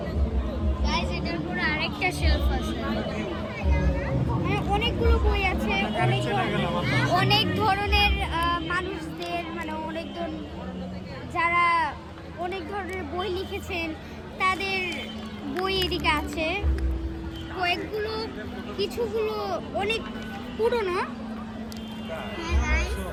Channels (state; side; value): identical; both; correlation 1.00